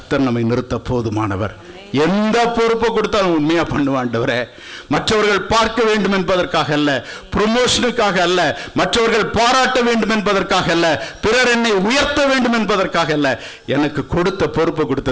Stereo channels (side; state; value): both; identical; correlation 1.00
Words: நம்மை நிறுத்த போதுமானவர். எந்த பொறுப்பை கொடுத்தாலும் உண்மையா பண்ணுவாண்டவரே. மற்றவர்கள் பார்க்க வேண்டும் என்பதற்காக அல்ல, ப்ரொமோஷனுக்காக அல்ல, மற்றவர்கள் பாராட்ட வேண்டும் என்பதற்காக அல்ல, பிறர் என்னை உயர்த்த வேண்டும் என்பதற்காக அல்ல. எனக்கு கொடுத்த பொறுப்பை